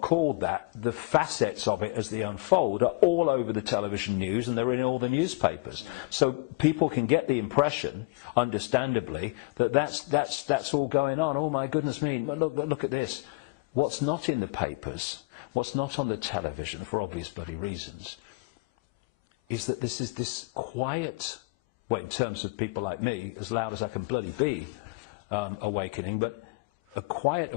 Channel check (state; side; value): quieter; right; 27.0 dB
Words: called that, the facets of it as they unfold are all over the television news and they're in all the newspapers. So people can get the impression, understandably, that that's all going on. Oh my goodness me, look at this. What's not in the papers, what's not on the television, for obvious bloody reasons, is that this is this quiet, well, in terms of people like me, as loud as I can bloody be, awakening, but a quiet